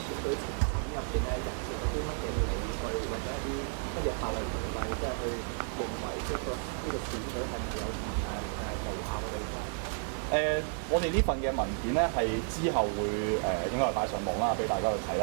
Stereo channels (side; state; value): left; silent; 56 dB below the other